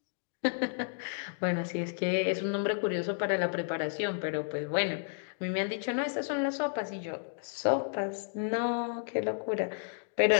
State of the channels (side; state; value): right; silent; digital silence